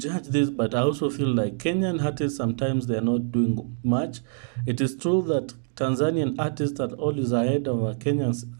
this, but I also feel like Kenyan artists sometimes they are not doing much. It is true that Tanzanian artists are always ahead of our Kenyan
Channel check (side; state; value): left; silent; digital silence